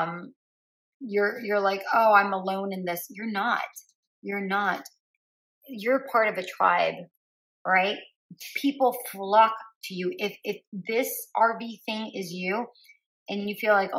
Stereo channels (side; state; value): both; identical; correlation 1.00